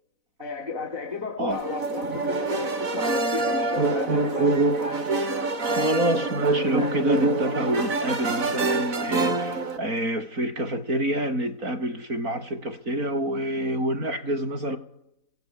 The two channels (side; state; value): left; late; 4.0 ms